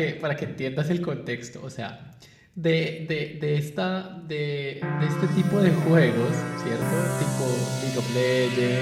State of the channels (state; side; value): identical; both; correlation 1.00